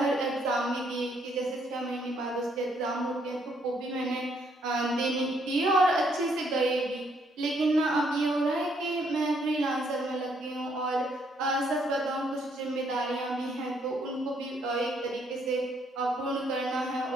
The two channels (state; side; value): normal; both; correlation 0.70